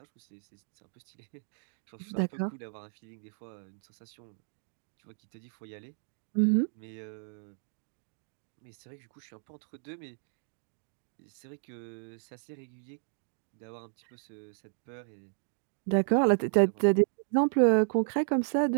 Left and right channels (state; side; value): silent; left; digital silence